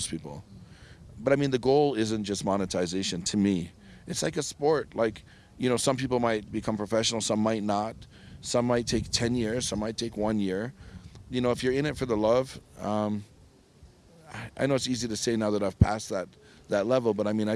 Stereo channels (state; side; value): identical; both; correlation 1.00